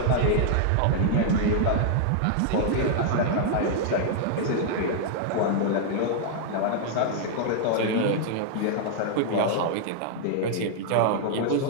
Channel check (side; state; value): both; different; correlation 0.00